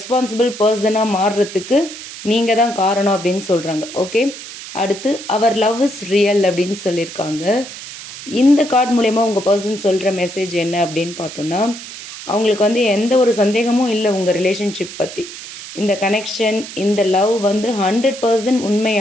பர்சனாக மாறுறதுக்கு நீங்கள் தான் காரணம் அப்படின்னு சொல்கிறாங்க. ஓகே, அடுத்து அவர் லவ் இஸ் ரியல் அப்படின்னு சொல்லியிருக்காங்க. இந்த கார்டு மூலயமா உங்கள் பர்சன் சொல்கிற மெசேஜ் என்ன அப்படின்னு பார்த்தோன்னா, அவங்களுக்கு எந்த ஒரு சந்தேகமும் இல்லை உங்கள் ரிலேஷன்ஷிப் பற்றி. இந்த கனெக்ஷன், இந்த லவ் 100%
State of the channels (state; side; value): noise; right; hiss, 12 dB below the sound